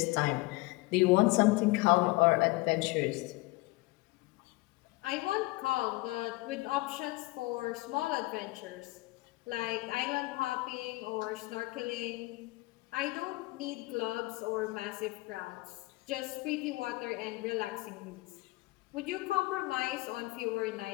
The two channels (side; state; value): right; quieter; 21.9 dB